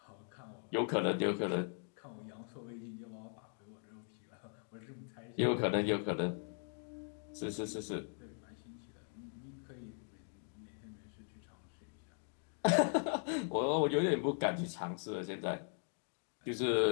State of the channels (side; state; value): right; silent; 51 dB below the other